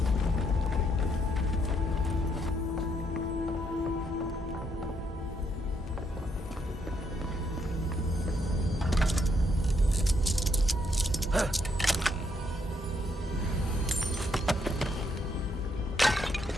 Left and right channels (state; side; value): normal; both; correlation 0.74